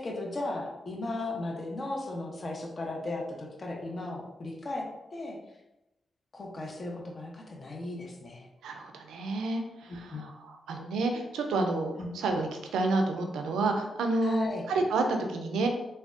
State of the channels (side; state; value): both; normal; correlation 0.78